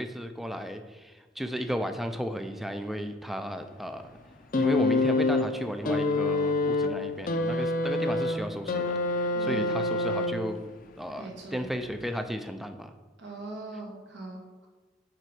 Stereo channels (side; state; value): both; normal; correlation 0.45